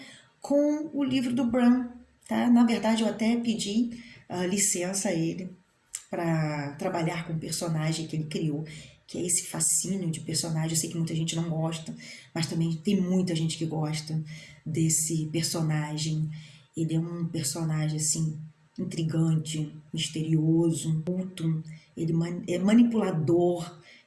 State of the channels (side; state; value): both; identical; correlation 1.00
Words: com o livro do Bram, tá? Na verdade, eu até pedi licença a ele para trabalhar com o personagem que ele criou, que é esse fascínio de personagem. Eu sei que muita gente não gosta, mas também tem muita gente que gosta desse personagem. Ele é um personagem, assim, intrigante, misterioso, culto, ele é manipulador,